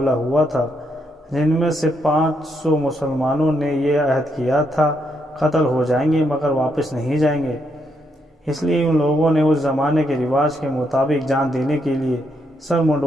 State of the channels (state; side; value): normal; both; correlation 0.78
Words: ہوا تھا، جن میں سے 500 مسلمانوں نے یہ عہد کیا تھا قتل ہو جائیں گے مگر واپس نہیں جائیں گے۔ اس لیے ان لوگوں نے اس زمانے کے رواج کے مطابق جان دینے کے لیے سر